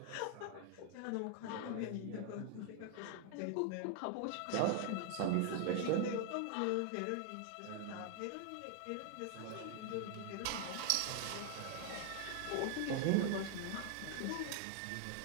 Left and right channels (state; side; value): different; both; correlation 0.00